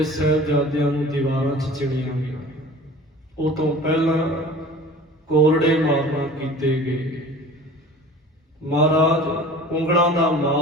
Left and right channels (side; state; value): both; normal; correlation 0.42